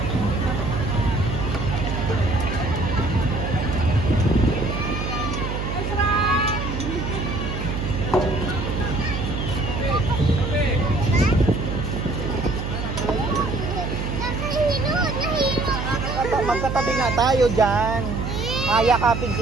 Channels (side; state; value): right; noise; hum, 4 dB below the sound